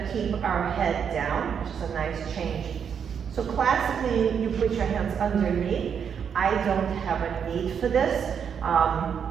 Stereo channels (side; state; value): left; quieter; 7.4 dB